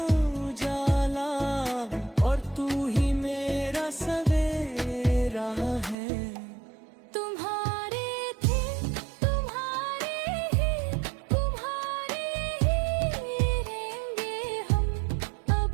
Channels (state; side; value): drops out; left; at 6.0 s